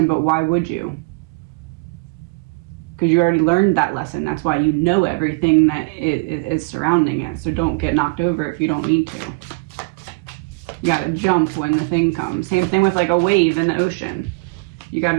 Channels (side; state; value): left; quieter; 29.9 dB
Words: but why would you? Because you already learned that lesson. That's why you know everything that is surrounding it. So don't get knocked over if you don't need to. You gotta jump when the thing comes. Same thing with like a wave in the ocean. You